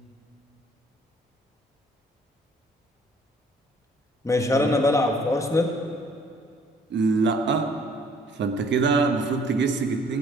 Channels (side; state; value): both; normal; correlation 0.59